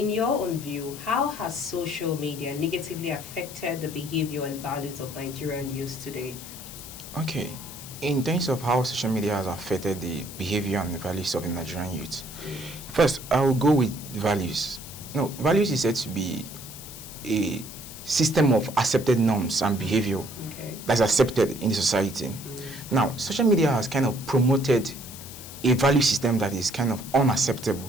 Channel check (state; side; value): noise; left; hiss, 13 dB below the sound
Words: your own view, how has social media negatively affected the behavior and values of Nigerian youths today? Okay, in terms of how social media has affected the behavior and the values of the Nigerian youth, first, I will go with values. No, values is said to be a system of accepted norms and behavior that's accepted in the society. Now, social media has kind of promoted a value system that is kind of